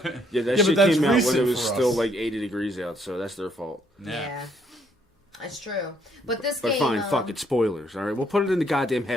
but shit that's came out when recent it was for still us. like 80 degrees out, so that's their fault. Yeah. That's true. But this But game... fine, fuck it, spoilers, alright? We'll put it in the goddamn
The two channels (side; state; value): both; normal; correlation 0.69